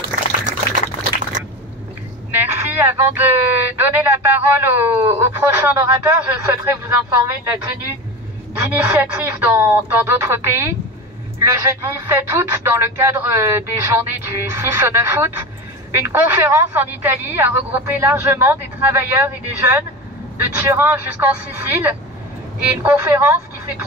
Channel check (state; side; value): normal; both; correlation 0.27